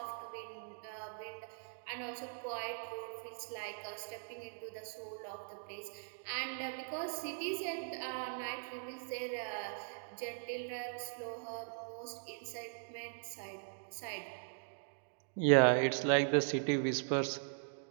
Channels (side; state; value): left; silent; digital silence